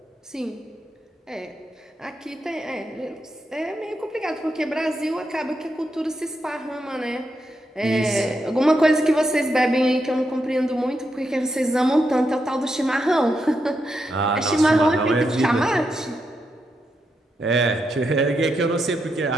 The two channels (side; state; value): both; normal; correlation 0.83